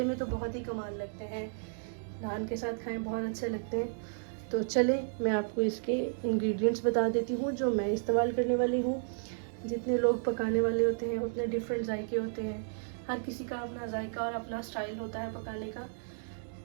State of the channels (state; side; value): silent; left; digital silence